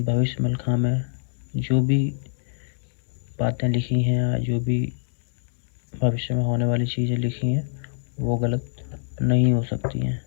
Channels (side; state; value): right; silent; 62 dB below the other